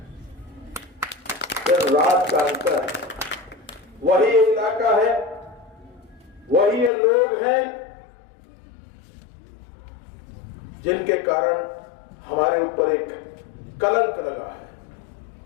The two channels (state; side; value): drops out; right; at 6.9 s